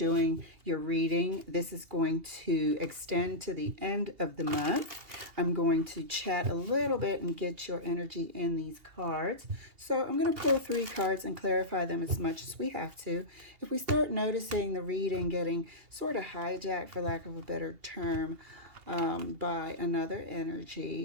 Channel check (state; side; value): late; left; 2.8 ms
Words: your reading. This is going to extend to the end of the month. I'm going to chat a little bit and get your energy in these cards. So I'm going to pull 3 cards and clarify them as much as we have to. If we start noticing the reading getting sort of hijacked, for lack of a better term, by another